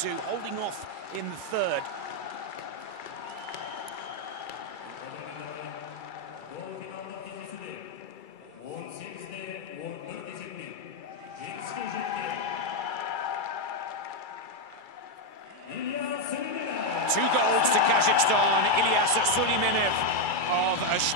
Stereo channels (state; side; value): late; right; 2.3 ms